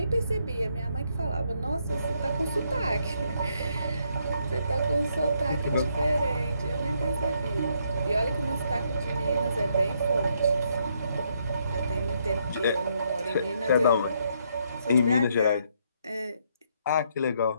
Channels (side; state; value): both; inverted; correlation -0.74